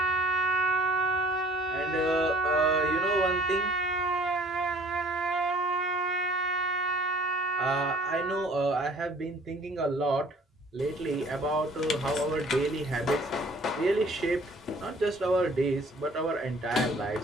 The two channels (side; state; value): both; normal; correlation 0.54